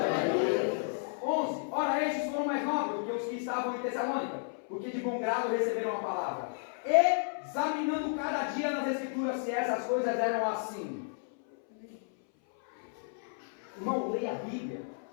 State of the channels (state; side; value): silent; right; 56 dB below the other